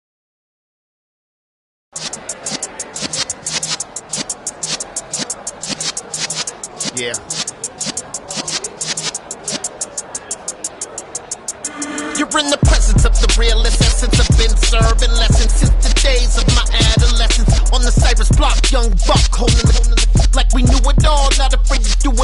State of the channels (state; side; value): identical; both; correlation 1.00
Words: Yeah. You're in the presence of the realest essence. I've been serving lessons since the days of my adolescence. On the Cypress block, young buck holding the like we knew it all. Not afraid to do